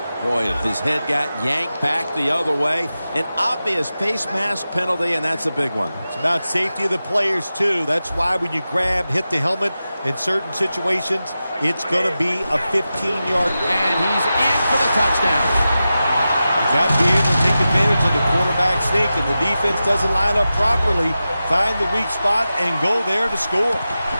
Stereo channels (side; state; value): both; inverted; correlation -0.93